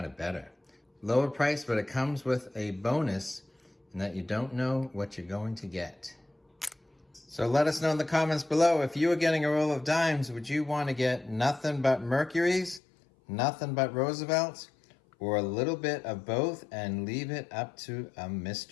of better. Lower price, but it comes with a bonus in that you don't know what you're going to get. So let us know in the comments below, if you were getting a roll of dimes, would you want to get nothing but Mercuries, nothing but Roosevelts, or a little bit of both and leave it up to a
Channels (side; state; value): right; drops out; at 12.8 s